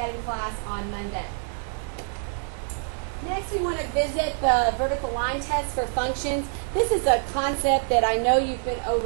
in class on Monday. Next, we want to visit the vertical line test for functions. This is a concept that I know you've been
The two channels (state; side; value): silent; left; 61 dB below the other